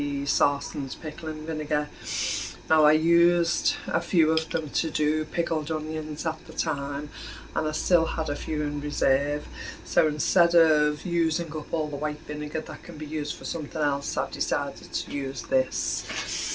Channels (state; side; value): identical; both; correlation 1.00